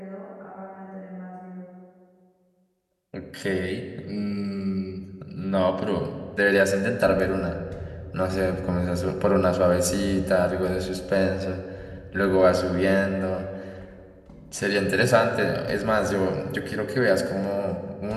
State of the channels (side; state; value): both; identical; correlation 1.00